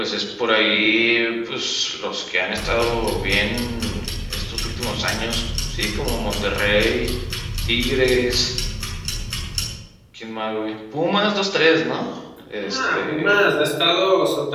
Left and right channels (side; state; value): both; identical; correlation 1.00